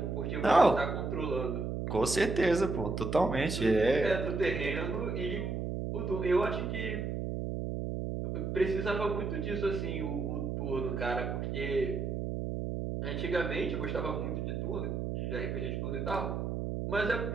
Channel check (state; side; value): noise; right; hum, 2 dB below the sound